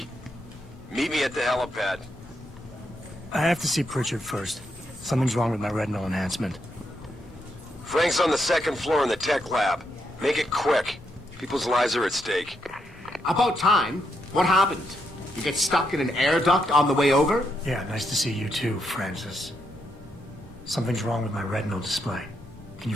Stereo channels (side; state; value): both; normal; correlation 0.80